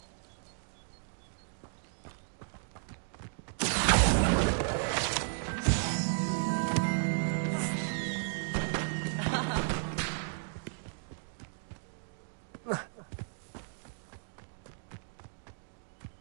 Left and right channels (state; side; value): silent; left; digital silence